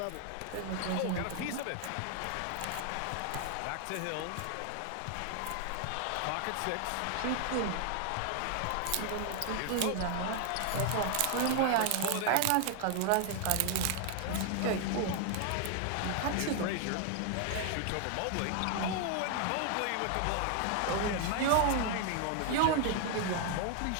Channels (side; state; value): both; different; correlation 0.00